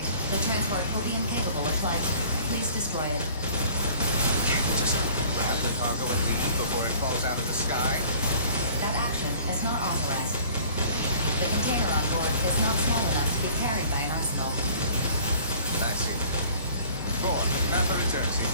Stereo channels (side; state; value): both; inverted; correlation -0.50